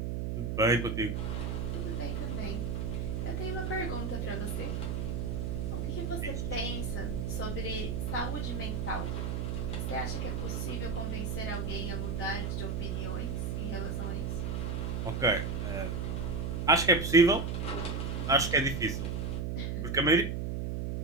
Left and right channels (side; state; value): right; noise; hum, 1 dB below the sound